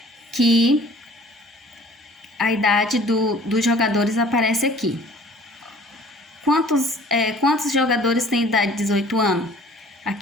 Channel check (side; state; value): both; normal; correlation 0.50